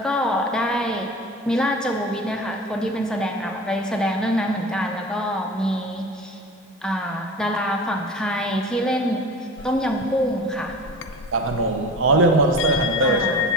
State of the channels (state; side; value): normal; both; correlation 0.35